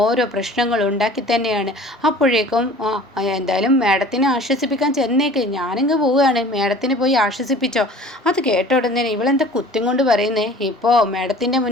പ്രശ്നങ്ങൾ ഉണ്ടാക്കി തന്നെയാണ്. അപ്പോഴേക്കും എന്തായാലും മാഡത്തിനെ ആശ്വസിപ്പിക്കാൻ ചെന്നേക്ക്, ഞാനിങ്ങ് പോവുകയാണ്, മേഡത്തിന് പോയി ആശ്വസിപ്പിച്ചോ. അത് കേട്ട ഉടനെ ഇവളെന്താ കുത്തും കൊണ്ട് പറയുന്നേ, ഇപ്പോൾ മേഡത്തിൻ്റെ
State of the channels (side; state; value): both; normal; correlation 0.46